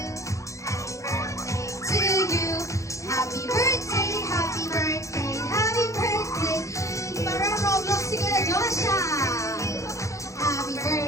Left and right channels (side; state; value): right; late; 0.15 ms